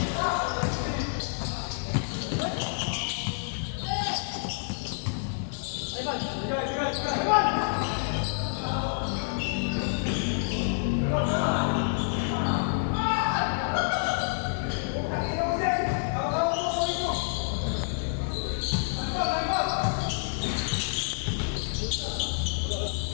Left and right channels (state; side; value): silent; right; digital silence